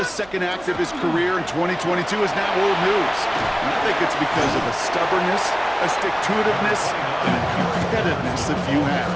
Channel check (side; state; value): right; noise; hum, 23 dB below the sound